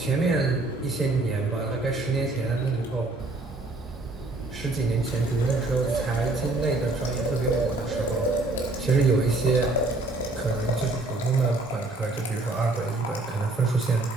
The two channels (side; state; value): left; quieter; 3.0 dB